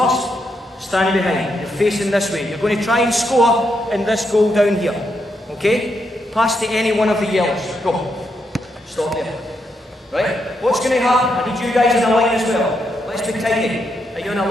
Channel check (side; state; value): both; normal; correlation 0.81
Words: Standing behind. You're facing this way. You're going to try and score in this goal down here. Okay? Pass to any one of the yellows. Go. Stop there. Right? What's going to happen? I need you guys in a line as well. Let's be tidy. Are you in a